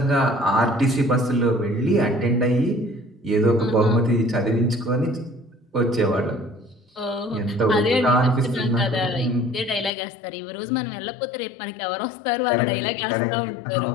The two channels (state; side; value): drops out; right; at 9.9 s